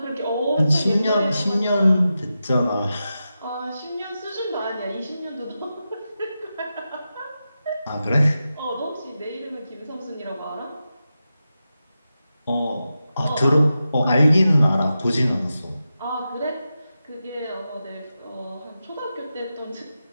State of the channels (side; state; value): both; inverted; correlation -0.91